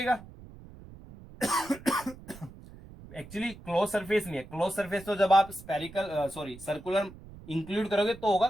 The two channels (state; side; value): noise; right; rumble, 18 dB below the sound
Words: एक्चुअली क्लोज सरफेस नहीं है, क्लोज सरफेस तो जब आप स्पेरिकल सर्कुलर इंक्लूड करोगे तो होगा,